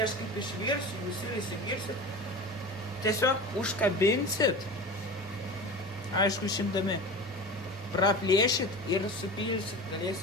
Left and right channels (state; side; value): normal; both; correlation 0.32